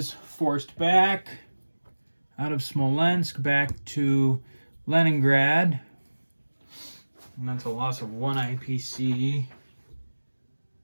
forced back out of Smolensk back to Leningrad. And that's a loss of 1 IPC.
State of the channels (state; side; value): inverted; both; correlation -1.00